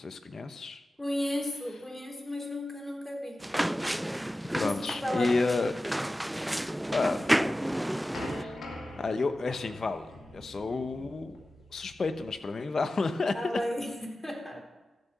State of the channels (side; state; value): both; normal; correlation 0.95